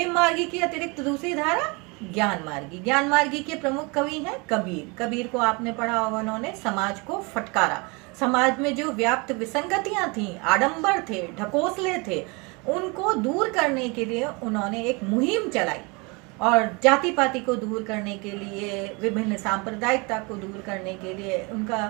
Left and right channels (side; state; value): left; quieter; 28.7 dB